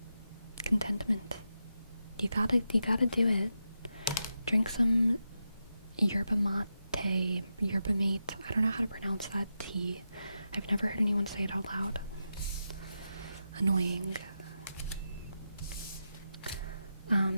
You gotta do it. Drink some yerba mate. I don't know how to pronounce that tea. I've never heard anyone say it out loud. Annoying.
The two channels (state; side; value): inverted; both; correlation -0.88